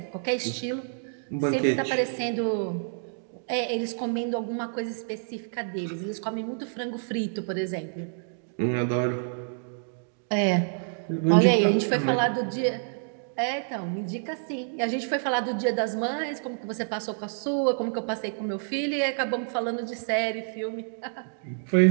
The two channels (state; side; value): silent; left; digital silence